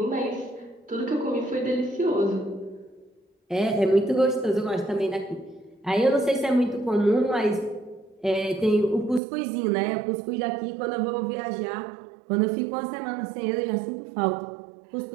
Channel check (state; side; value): drops out; left; at 9.2 s